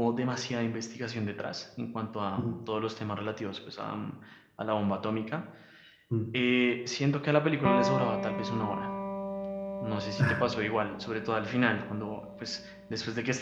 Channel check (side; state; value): both; identical; correlation 1.00